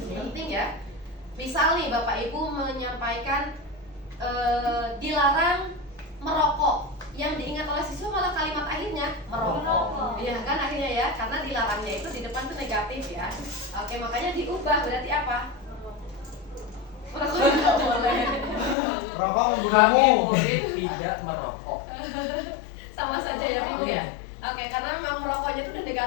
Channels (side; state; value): right; drops out; at 18.8 s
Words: ya. Misal nih Bapak Ibu menyampaikan dilarang merokok, yang diingat oleh siswa malah kalimat akhirnya merokok. Iya kan akhirnya ya, karena dilarangnya itu di depan tuh negatif ya. Oke, makanya diubah berarti apa? Merokok tidak boleh. Rokok Kami membunuhmu. murid tidak merokok. Sama saja ya Ibu ya. Oke, karena memang merokoknya itu udah